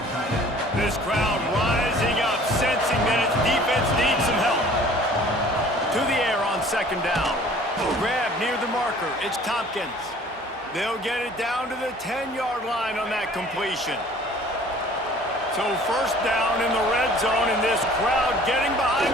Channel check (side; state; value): both; normal; correlation 0.51